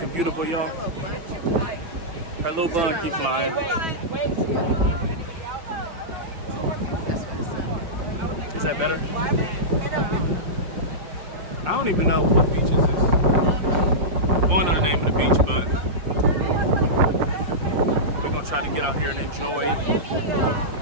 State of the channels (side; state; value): left; late; 5.7 ms